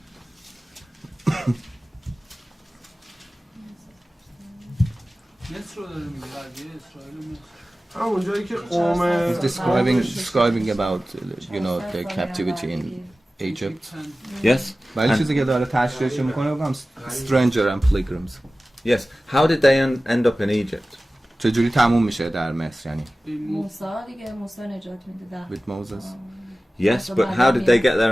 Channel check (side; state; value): both; normal; correlation 0.96